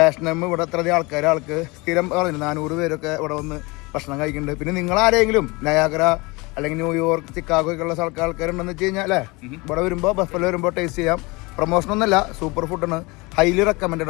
ഇവിടെ അത്രയധികം ആൾക്ക് സ്ഥിരം പറഞ്ഞു 400 പേരൊക്കെ ഇവിടെ വന്ന് ഭക്ഷണം കഴിക്കുന്നുണ്ട്. പിന്നെ നിങ്ങളാരെങ്കിലും നയാഗ്ര അല്ലെങ്കിൽ ന്യൂയോർക്ക്, ചിക്കാഗോ ഒക്കെ ഉള്ള ആൾക്കാരുണ്ടെന്ന് വെച്ച് കഴിഞ്ഞാൽ അല്ലേ, ഇവിടെ വരുമ്പോൾ ബഫല്ലോ വരുമ്പോൾ ടേസ്റ്റ് ചെയ്യാം. പ്രൊമോഷനൊന്നുമല്ല, സൂപ്പർ ഫുഡാണ്, ഹൈലി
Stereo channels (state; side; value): quieter; right; 25.2 dB